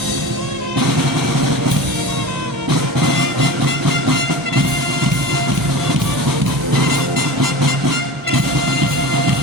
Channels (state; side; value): normal; both; correlation 0.32